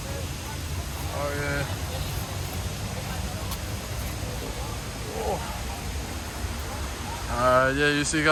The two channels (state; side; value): identical; both; correlation 1.00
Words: Oh yeah. Oh. Yeah, you see,